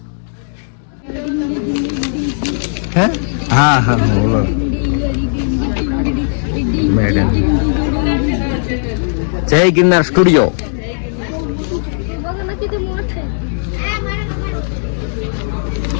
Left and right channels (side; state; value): right; silent; 69 dB below the other